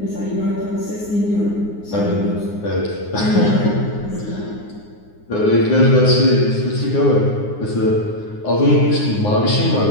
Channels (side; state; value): right; late; 9.7 ms